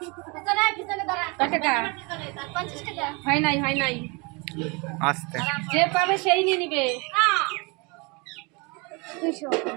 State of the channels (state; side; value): quieter; left; 29.2 dB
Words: পিছনে পিছনে দাঁড়া। কয় টাকা? 50 টাকা। হয় নাই, হয় নাই। আস্তে যে পাবে সেই নিয়ে নিবে। 200